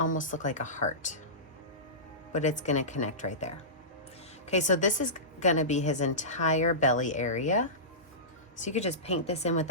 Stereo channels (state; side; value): normal; both; correlation -0.20